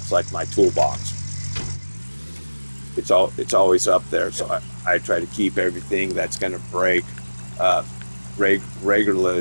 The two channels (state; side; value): inverted; both; correlation -1.00